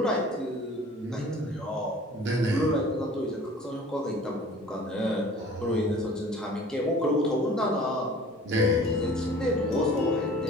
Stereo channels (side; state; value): both; normal; correlation 0.47